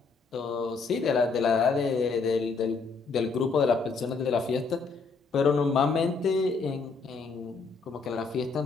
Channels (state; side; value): quieter; right; 4.6 dB